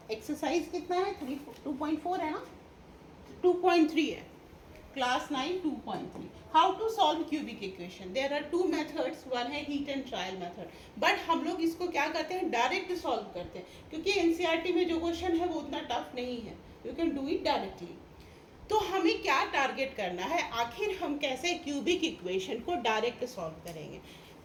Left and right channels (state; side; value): identical; both; correlation 1.00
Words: एक्सरसाइज कितना है 2.4 है ना 2.3 है class 9 2.3 how to solve cubic equation there are two methods one है hit and trial method but हम लोग इसको क्या करते हैं डायरेक्ट सॉल्व करते हैं क्योंकि एनसीईआरटी में जो क्वेश्चन है वो उतना टफ नहीं है you can do it directly. तो हमें क्या टारगेट करना है आखिर हम कैसे क्यूबिक इक्वेशन को डायरेक्ट सॉल्व करेंगे।